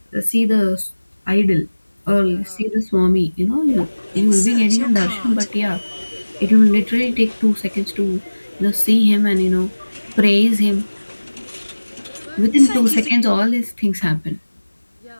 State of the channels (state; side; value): inverted; both; correlation -1.00